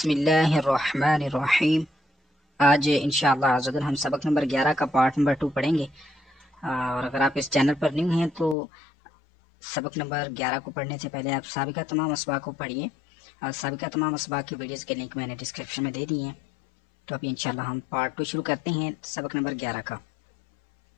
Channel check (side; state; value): right; drops out; at 8.6 s